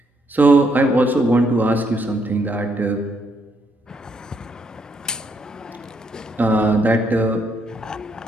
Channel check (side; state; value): both; normal; correlation 0.74